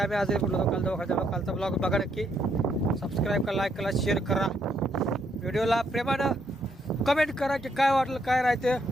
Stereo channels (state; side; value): normal; both; correlation 0.74